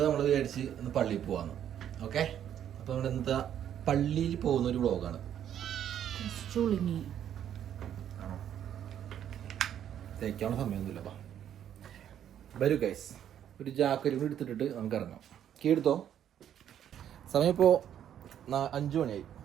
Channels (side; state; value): left; quieter; 10.0 dB